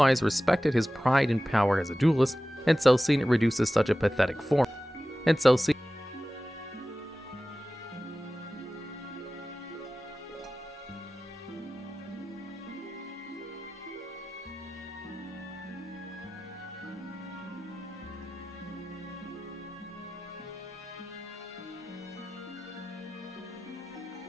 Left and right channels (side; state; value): both; normal; correlation 0.96